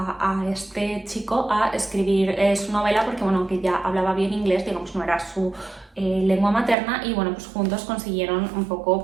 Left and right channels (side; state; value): left; drops out; at 6.8 s